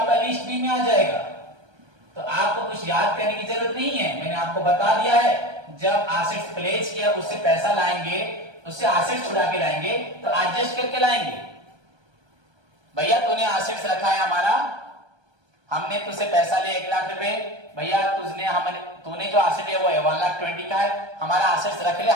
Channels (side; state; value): left; late; 1.3 ms